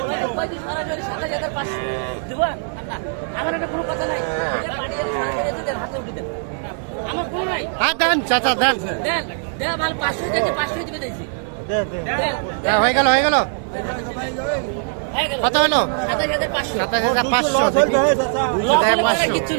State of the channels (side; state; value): left; silent; 65 dB below the other